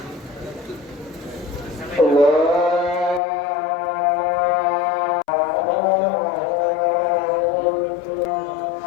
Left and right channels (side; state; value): right; drops out; at 3.2 s